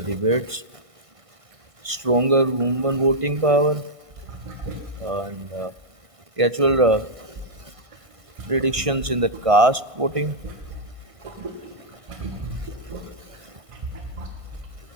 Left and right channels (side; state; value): left; late; 1.5 ms